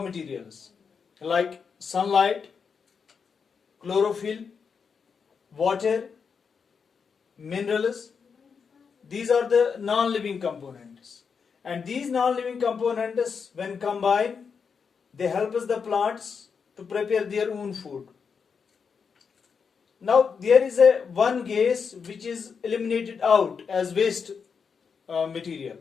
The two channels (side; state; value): right; quieter; 6.0 dB